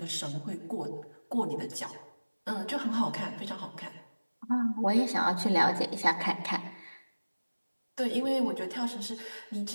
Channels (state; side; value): inverted; both; correlation -1.00